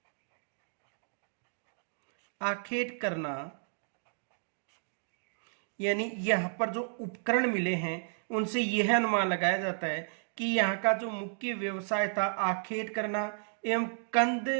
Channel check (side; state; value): left; silent; digital silence